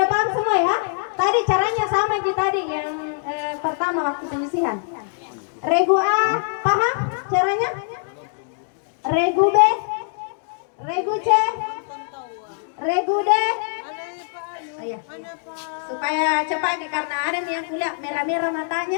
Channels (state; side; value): silent; right; digital silence